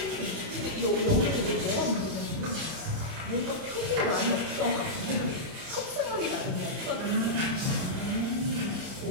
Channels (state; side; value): late; left; 31 ms